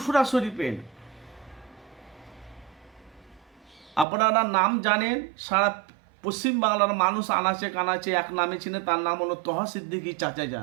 শরীফের আপনারা নাম জানেন, সারা পশ্চিমবাংলার মানুষ আনাচে কানাচে এক নামে চিনে, তার নাম হলো তোহা সিদ্দিকী চাচা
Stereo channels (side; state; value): left; drops out; at 4.0 s